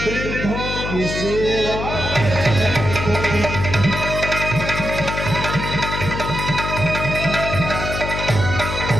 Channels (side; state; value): left; noise; hum, 4 dB below the sound